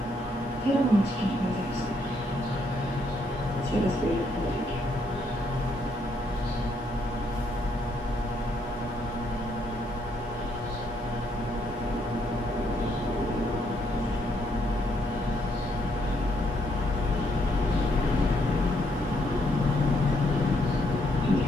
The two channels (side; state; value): both; normal; correlation 0.73